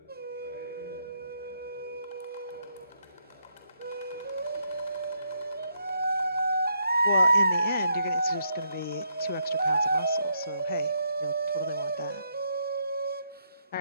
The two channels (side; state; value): both; inverted; correlation -0.78